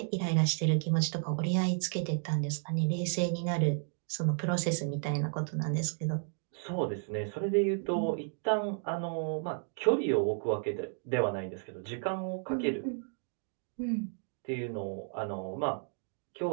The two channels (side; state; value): left; silent; 56 dB below the other